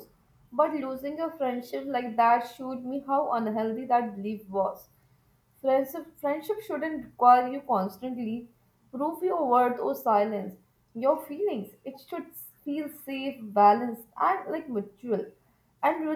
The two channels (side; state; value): both; identical; correlation 1.00